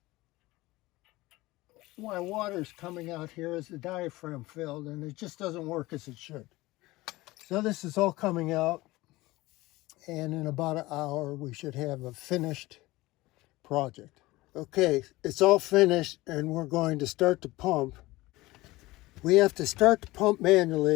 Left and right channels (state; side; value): quieter; right; 19.6 dB